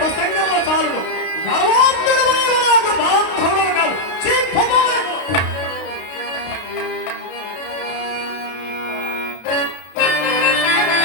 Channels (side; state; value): right; late; 32 ms